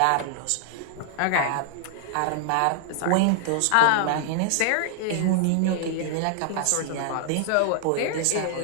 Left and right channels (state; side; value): different; both; correlation 0.00